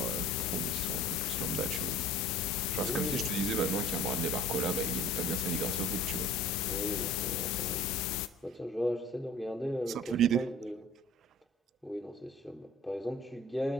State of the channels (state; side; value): normal; both; correlation 0.46